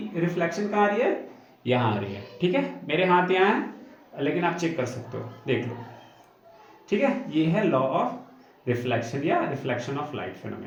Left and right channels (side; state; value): both; identical; correlation 1.00